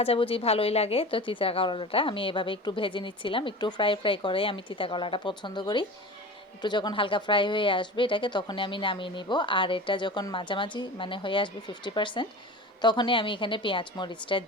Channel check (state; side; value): normal; both; correlation 0.34